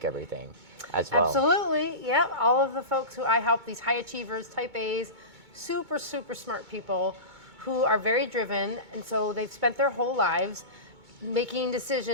everything as well. Absolutely, yeah. All of the folks who I help, these high achievers, type A's, super smart people who are very driven, and so they've spent their whole lives making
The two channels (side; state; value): left; late; 2.2 ms